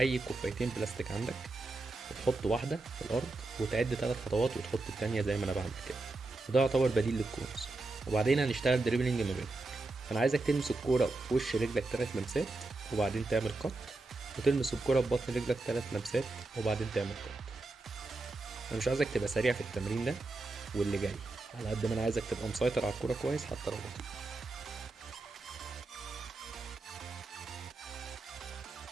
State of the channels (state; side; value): quieter; left; 3.2 dB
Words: كوبايتين بلاستيك عندك وتحط واحدة في الارض وتعد 3 خطوات وتحط التانية زي ما انا بعمل كده، وده يعتبر بديل للكونز. وبعدين هنشتغل دريبلينج ما بينهم. انا عايزك تلمس الكورة بوش رجلك 3 لمسات وبعدين تعمل قط، وتلمس الكورة ببطن رجلك 3 لمسات وبعدين تعمل قط. انا مش عايزك تبقى سريع في التمرين ده واللي جاي، على قد ما انا عايزك تبقى مسيطر على الكورة كويس حتى لو بطيء.